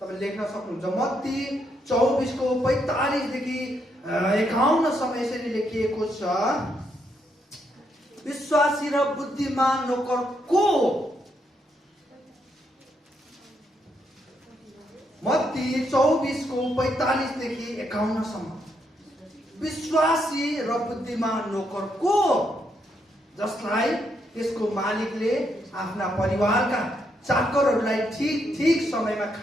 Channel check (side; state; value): both; normal; correlation 0.77